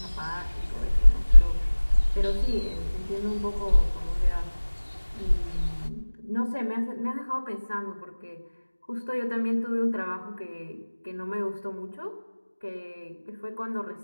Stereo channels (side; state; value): both; inverted; correlation -1.00